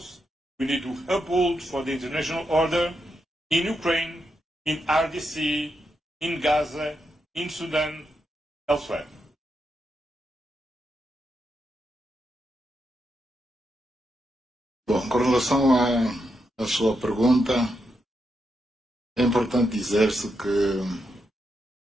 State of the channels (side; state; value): both; normal; correlation 0.83